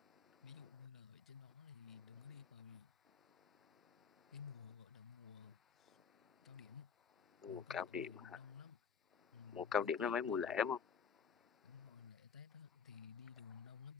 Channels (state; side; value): quieter; right; 6.5 dB